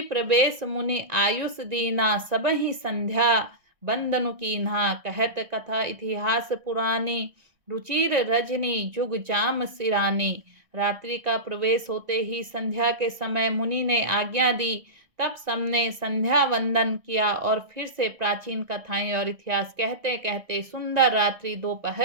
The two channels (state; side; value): late; left; 1.9 ms